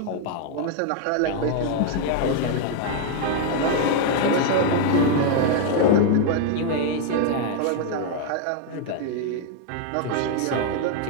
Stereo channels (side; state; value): both; different; correlation 0.00